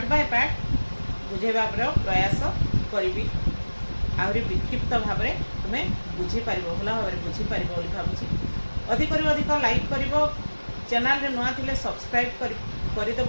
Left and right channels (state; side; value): inverted; both; correlation -1.00